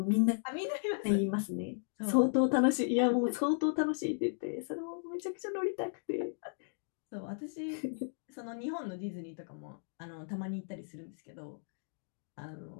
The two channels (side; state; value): right; silent; digital silence